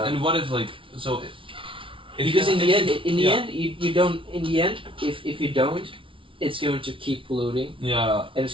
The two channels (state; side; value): late; left; 0.25 ms